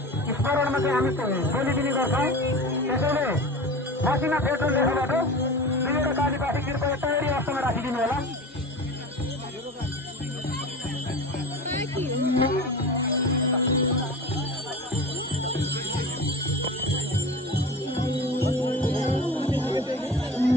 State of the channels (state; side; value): normal; both; correlation 0.32